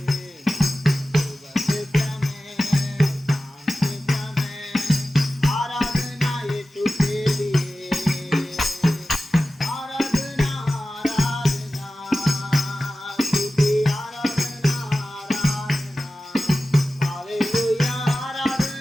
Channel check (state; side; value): normal; both; correlation 0.95